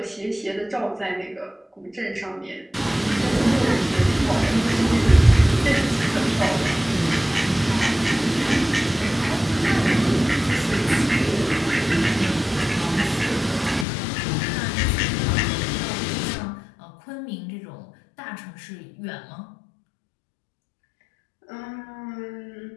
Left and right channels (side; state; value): right; drops out; at 13.9 s